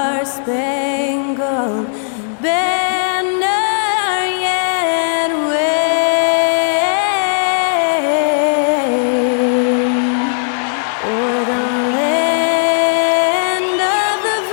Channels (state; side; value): silent; right; digital silence